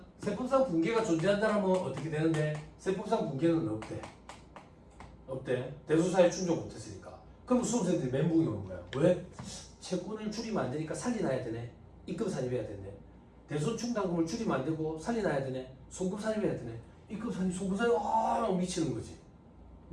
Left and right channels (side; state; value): both; identical; correlation 1.00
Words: 세법상 붕괴가 존재한다면 어떻게 되는데 세법상 붕괴는 없대. 대손사유 충족 못했으니까. 그럼 수험생들이 멘붕이 오는 거야. 왜? 채권을 줄이면 안 되니까 살려놔야 되네. 입금 산입해야 되네. 대손 충당금을 줄이면 안 되고 살려놔야 되네. 송금 산입해야 되네. 입금 산입, 송금 산입 미치는 거지.